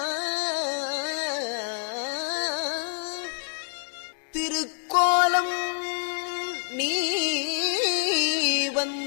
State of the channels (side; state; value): right; silent; 59 dB below the other